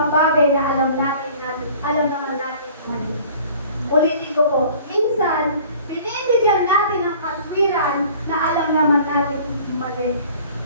bagay na alam naman natin mali. Ulitin ko po, minsan, binibigyan natin ng katwiran na alam naman natin mali.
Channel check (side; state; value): both; inverted; correlation -0.49